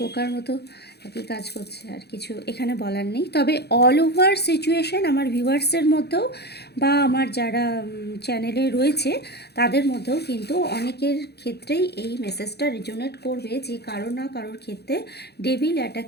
বোকার মতো একই কাজ করছে, আর কিছু এখানে বলার নেই। তবে অল ওভার সিচুয়েশন আমার ভিউয়ার্সের মধ্যেও বা আমার যারা চ্যানেলে রয়েছে তাদের মধ্যেও কিন্তু অনেকের ক্ষেত্রেই এই মেসেজটা রিজোনেট করবে যে কারো না কারোর ক্ষেত্রে ডেভিল অ্যাটাক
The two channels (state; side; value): late; right; 0.48 ms